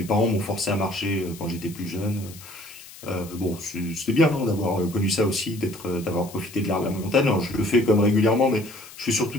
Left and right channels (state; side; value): noise; left; hiss, 18 dB below the sound